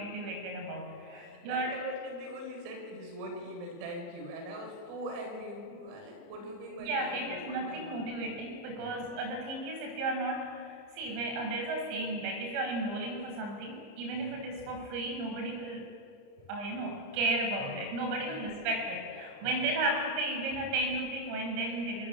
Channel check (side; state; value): left; late; 30 ms